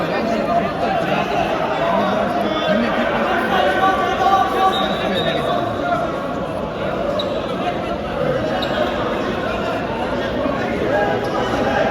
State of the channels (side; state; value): both; identical; correlation 1.00